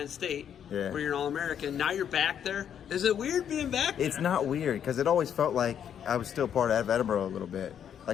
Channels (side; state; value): right; quieter; 8.9 dB